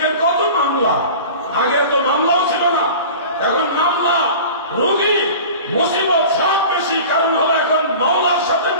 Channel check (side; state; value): both; inverted; correlation -0.38